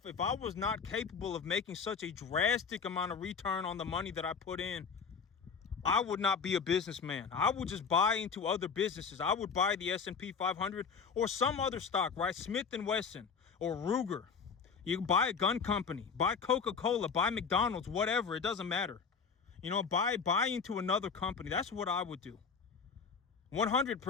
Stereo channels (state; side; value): quieter; right; 5.8 dB